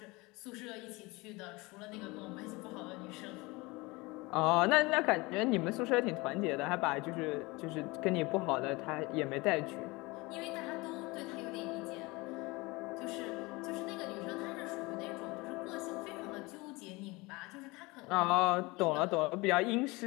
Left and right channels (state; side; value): quieter; right; 23.9 dB